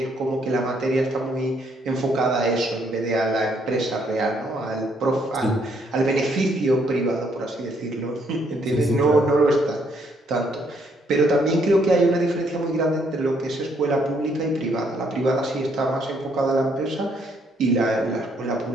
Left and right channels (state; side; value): normal; both; correlation 0.70